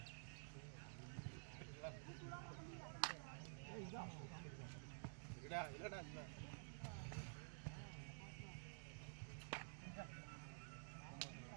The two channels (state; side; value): silent; left; digital silence